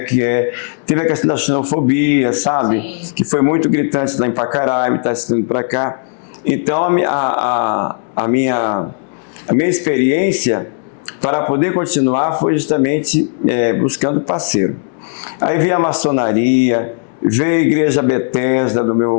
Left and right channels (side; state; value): right; silent; digital silence